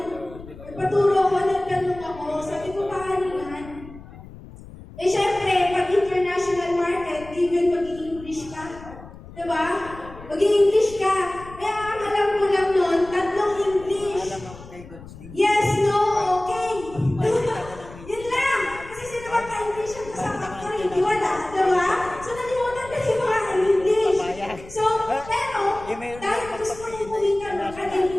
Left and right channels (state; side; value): noise; left; rumble, 17 dB below the sound